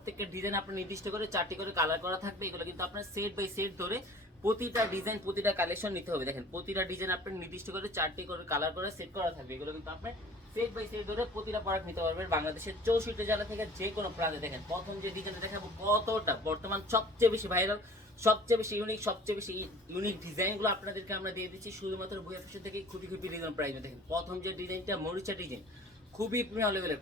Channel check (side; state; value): both; normal; correlation 0.47